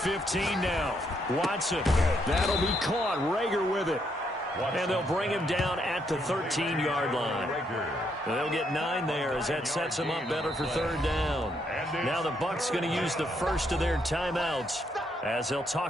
now. Watson. That'll be caught. Rager with it. And they'll bring him down at the 13-yard line. They'll get 9 there as that sets them up better for 3rd down. Now the Bucs going to use the first of their timeouts as they'll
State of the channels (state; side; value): normal; both; correlation 0.75